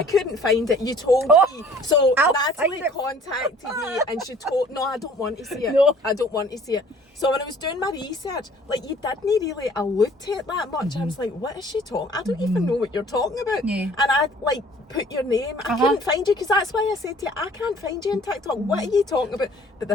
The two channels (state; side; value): normal; both; correlation 0.53